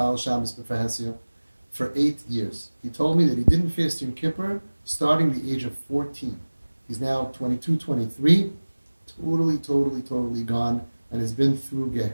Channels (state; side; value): inverted; both; correlation -1.00